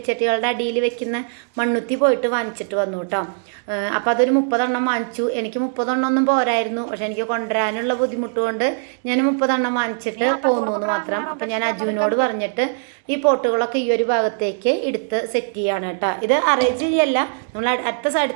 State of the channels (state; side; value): silent; left; digital silence